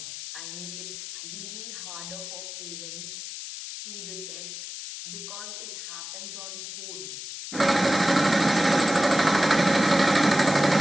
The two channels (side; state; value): left; noise; hiss, 9 dB below the sound